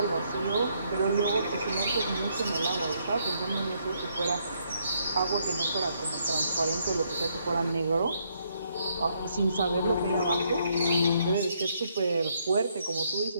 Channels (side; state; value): both; inverted; correlation -0.73